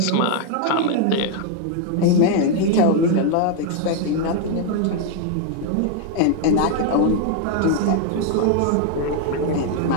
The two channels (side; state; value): both; different; correlation 0.00